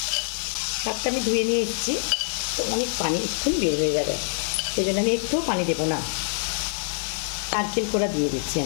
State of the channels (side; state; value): right; silent; 57 dB below the other